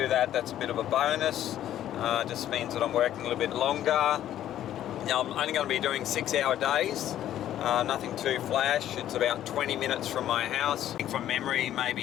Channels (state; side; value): quieter; right; 11.9 dB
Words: that, that's a bit of a bonus. Just means that I'm working a little bit longer. Now, I'm only going to be doing 6-hour days, nothing too flash. It's about 20 minutes from my house. I think from memory,